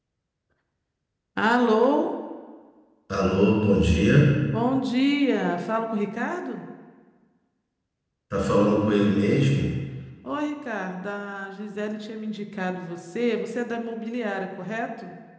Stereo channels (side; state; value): both; identical; correlation 1.00